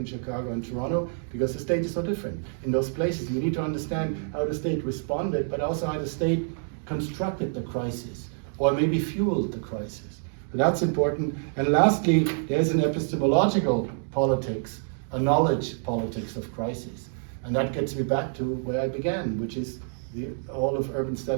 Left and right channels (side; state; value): left; silent; digital silence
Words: Chicago, and Toronto, because the state is so different in those places. You need to understand how the state responded, but also how the state constructed the crisis, or maybe fueled the crisis. So that's important. And lastly, there's an epistemological politics, a knowledge politics of crisis. And that gets me back to where I began, which is all of urban